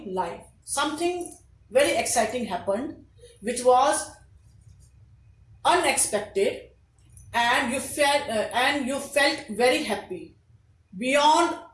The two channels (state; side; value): identical; both; correlation 1.00